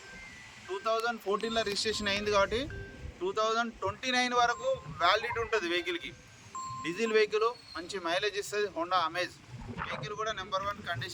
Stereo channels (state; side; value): identical; both; correlation 1.00